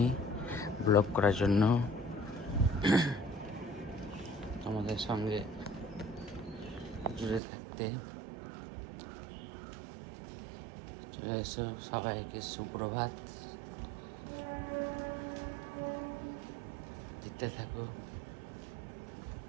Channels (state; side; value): drops out; left; at 7.4 s